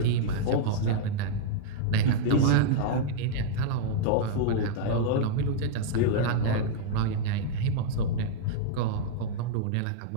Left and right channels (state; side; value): different; both; correlation -0.01